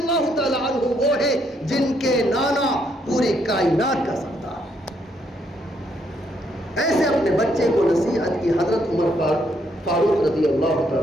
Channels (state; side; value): normal; both; correlation 0.73